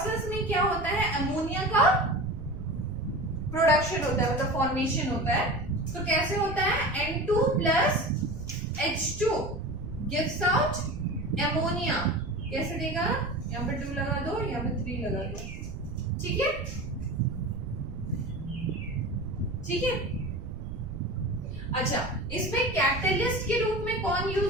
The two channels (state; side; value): noise; right; rumble, 10 dB below the sound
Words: में क्या होता है, अमोनिया का प्रोडक्शन होता है, मतलब फॉर्मेशन होता है। तो कैसे होता है, N2 plus H2 gives out ammonia. कैसे देगा, यहाँ पे 2 लगा दो, यहाँ पे 3 लगा दो, ठीक है, ठीक है। अच्छा, इसमें कैटलिस्ट के रूप में कौन